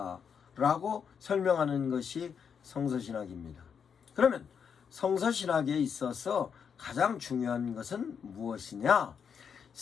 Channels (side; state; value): right; quieter; 7.0 dB